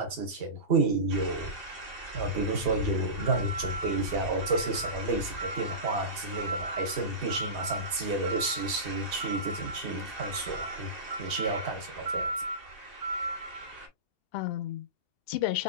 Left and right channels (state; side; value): late; right; 2.7 ms